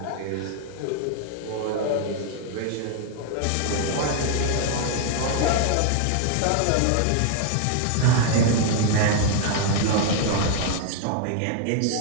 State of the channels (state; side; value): different; both; correlation 0.00